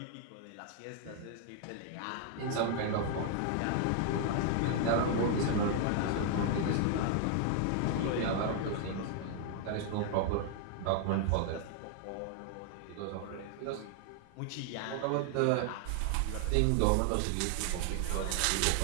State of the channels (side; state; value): both; different; correlation 0.00